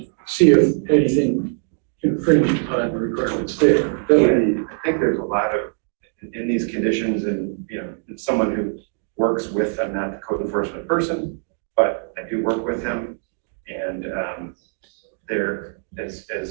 see if anything infringes upon the requirements there. That would be, I think there's a lot of, in these conditions, and if someone who works with, I'm not the code enforcement person, but I do work with him. And there, as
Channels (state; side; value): silent; left; digital silence